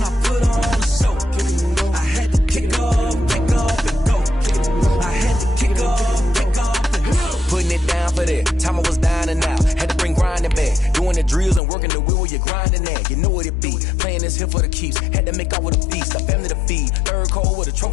I put on a show. I had to kick off and go. I had to kick off and go. Putting it down for that, time I was down and out, had to bring grinding back, doing the drills and working the wheel where you're grinding at. You know what it be, playing this here for the keeps, had to make off with a feast, a family to feed, third cold where the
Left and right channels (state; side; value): drops out; right; at 11.6 s